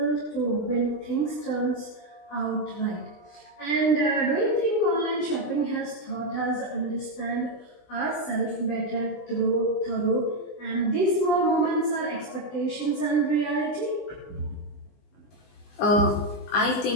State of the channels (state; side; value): late; right; 20 ms